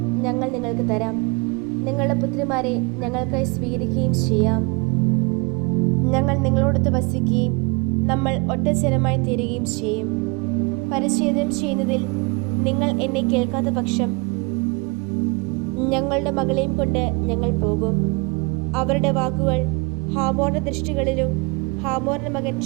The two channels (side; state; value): left; quieter; 28.5 dB